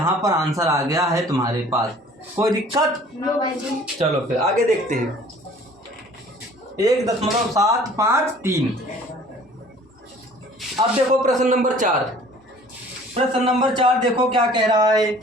पर आंसर आ गया है तुम्हारे पास। कोई दिक्कत? चलो फिर आगे देखते हैं। 1.753। अब देखो प्रश्न नंबर 4। प्रश्न नंबर 4 देखो क्या कह रहा है।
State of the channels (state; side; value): normal; both; correlation 0.51